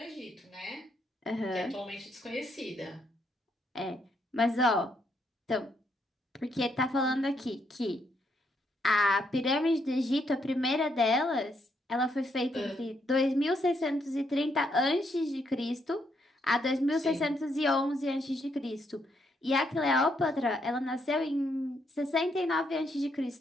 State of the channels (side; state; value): both; normal; correlation 0.75